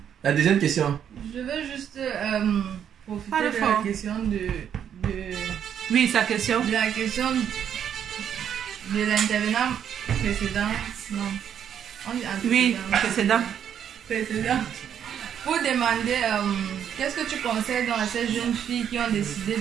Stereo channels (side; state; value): left; quieter; 9.0 dB